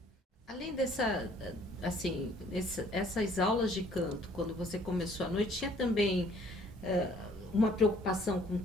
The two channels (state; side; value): normal; both; correlation 0.59